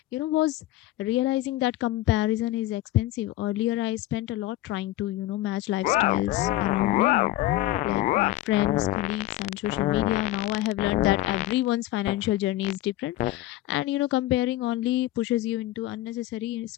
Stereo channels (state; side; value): quieter; right; 16.1 dB